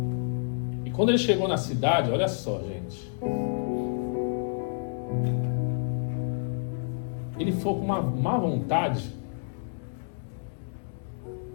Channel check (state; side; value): silent; right; digital silence